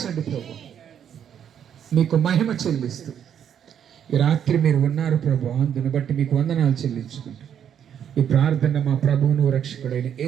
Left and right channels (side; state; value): left; quieter; 8.9 dB